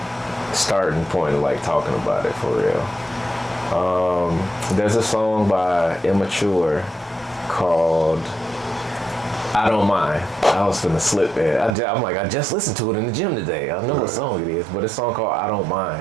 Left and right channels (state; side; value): drops out; left; at 11.8 s